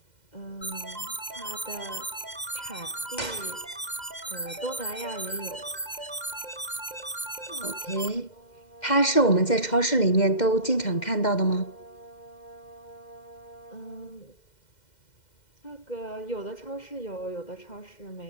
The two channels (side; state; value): right; late; 2.1 ms